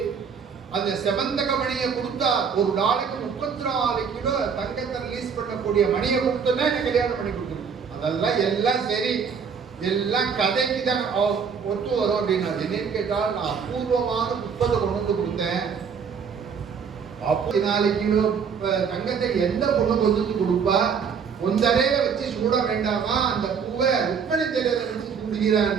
அந்த செவந்தக மணியை கொடுத்தா ஒரு நாளைக்கு 34 கிலோ தங்கத்தை ரிலீஸ் பண்ணக்கூடிய மணியை கொடுத்தோன்னா என்ன கல்யாணம் பண்ணி கொடுத்துரும். அதெல்லாம் எல்லாம் சரி, எல்லாம் கதைக்கு தான் ஒத்து வரும் அப்படின்னா. என்னன்னு கேட்டால் நான் அபூர்வமான புஷ்பத்தை கொண்டு வந்து கொடுத்தேன். 44 கிலோ தங்கத்தை எந்த பொண்ணு கொண்டு வந்து கொடுப்பா, ஒன்றரைய வச்சு சூட வேண்டாமா, அந்த பூவை ருக்மணி தேரத்தை வச்சு சூடுகிறான்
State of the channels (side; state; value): left; quieter; 6.4 dB